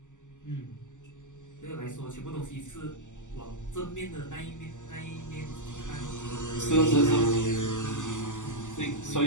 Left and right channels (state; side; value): late; right; 0.86 ms